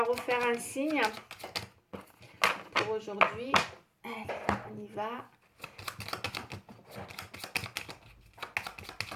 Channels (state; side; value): identical; both; correlation 1.00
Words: refaire un signe pour aujourd'hui. Allez, on y va.